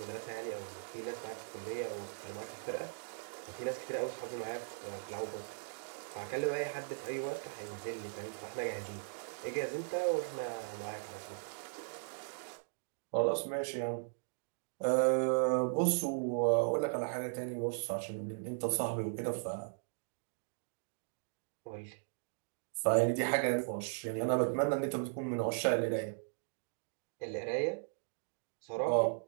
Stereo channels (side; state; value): left; silent; digital silence